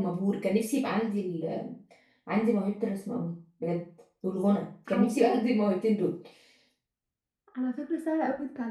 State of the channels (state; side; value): identical; both; correlation 1.00